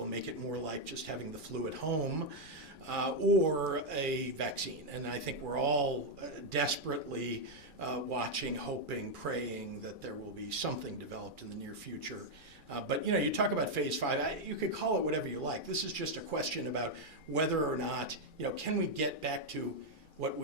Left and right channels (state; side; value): late; left; 2.4 ms